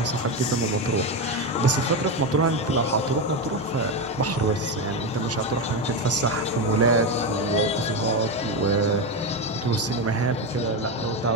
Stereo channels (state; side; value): normal; both; correlation 0.12